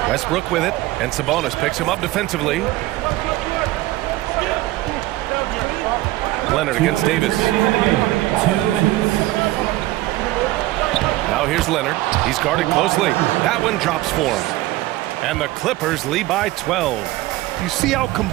Westbrook with it, and Sabonis picks him up defensively. Leonard against Davis. 2 minutes. Now here's Leonard. He's guarded closely. That one drops for him. And the Clippers lead by 12. You see how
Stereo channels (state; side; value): quieter; left; 17.4 dB